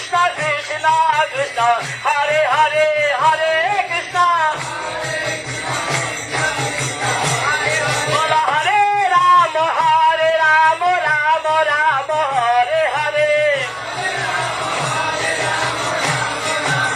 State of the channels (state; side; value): identical; both; correlation 1.00